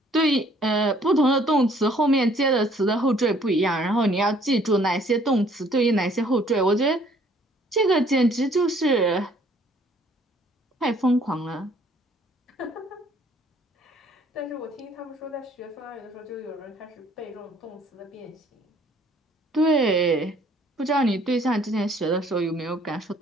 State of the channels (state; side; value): normal; both; correlation 0.60